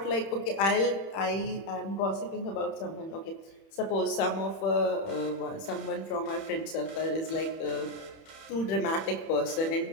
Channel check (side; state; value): right; late; 31 ms